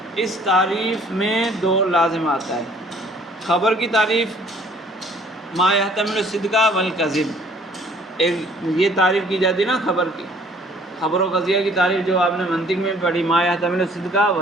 اس تعریف میں 2 لازم آتا ہے۔ خبر کی تعریف ما یحتمل الصدق والکذب، ایک یہ تعریف کی جاتی ہے نا خبر کی، خبر و قضیہ کی تعریف جو آپ نے منطق میں پڑھی، ما یحتمل الصدق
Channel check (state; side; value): normal; both; correlation 0.56